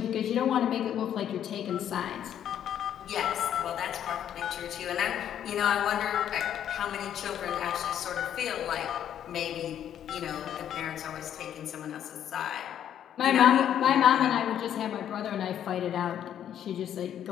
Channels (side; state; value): right; quieter; 10.0 dB